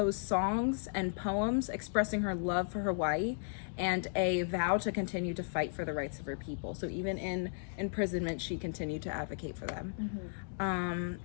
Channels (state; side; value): silent; right; digital silence